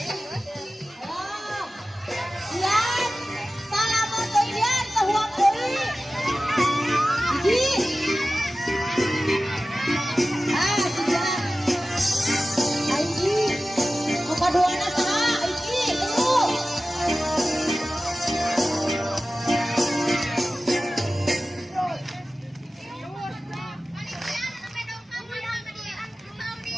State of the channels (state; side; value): normal; both; correlation 0.95